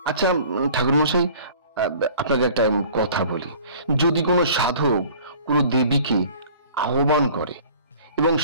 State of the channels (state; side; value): inverted; both; correlation -0.48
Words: আচ্ছা ঠাকুরমশাই, আপনাকে একটা কথা বলি। যদি কোনো সাধক কোনো দেবীকে আহ্বান করে এবং